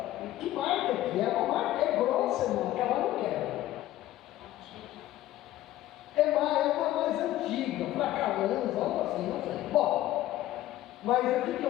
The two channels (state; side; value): quieter; right; 14.6 dB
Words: Que marca que é? Uma marca grossa, irmão, que ela não quer. É uma mais antiga, Fracalanza, algo assim, não sei. Bom, mas o que